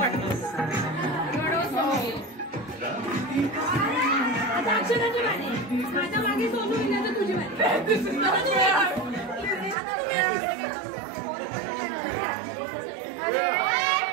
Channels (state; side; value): drops out; left; at 9.8 s